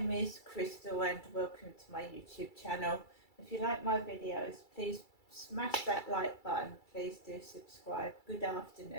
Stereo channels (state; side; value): late; right; 2.3 ms